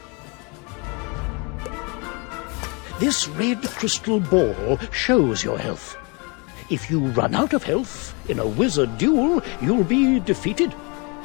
This red crystal ball shows your health. If you run out of health in a wizard duel, you'll be defeated.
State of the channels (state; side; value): quieter; right; 31.2 dB